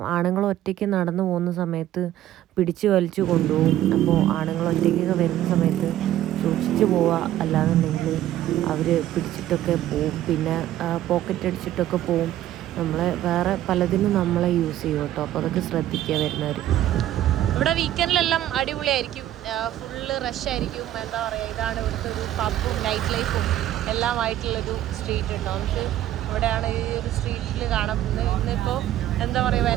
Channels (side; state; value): left; quieter; 12.9 dB